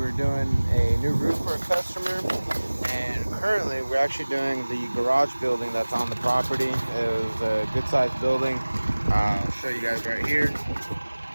were doing a new roof for a customer. And currently we're actually doing the garage building that's on the property. It was a good sized building. I'll show you guys right here.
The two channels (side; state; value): both; inverted; correlation -1.00